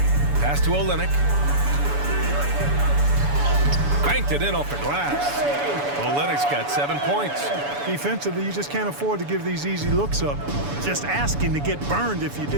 Pass to Olynyk. Banked it in off the glass. Olynyk's got 7 points. Defensively, you just can't afford to give these easy looks up. Just asking to get burned if you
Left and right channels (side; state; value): left; late; 7.0 ms